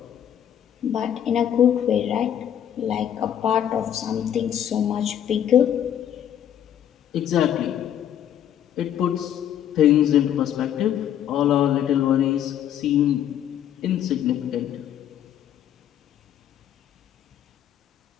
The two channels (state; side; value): quieter; right; 10.2 dB